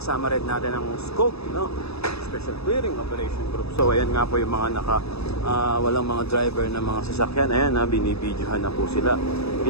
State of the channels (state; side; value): late; right; 0.78 ms